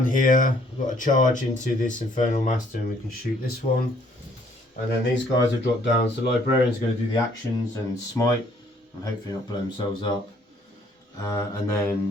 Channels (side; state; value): both; normal; correlation 0.63